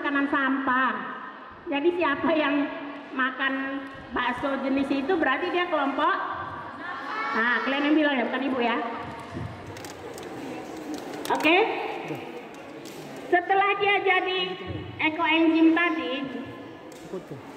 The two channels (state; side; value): identical; both; correlation 1.00